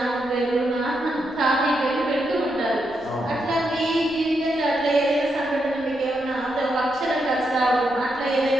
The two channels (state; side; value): noise; left; rumble, 25 dB below the sound